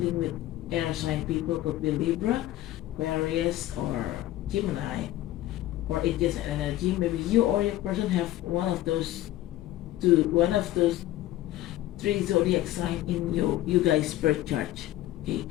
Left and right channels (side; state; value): right; quieter; 14.9 dB